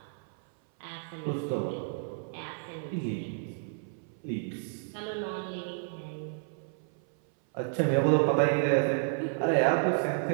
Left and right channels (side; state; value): left; silent; 57 dB below the other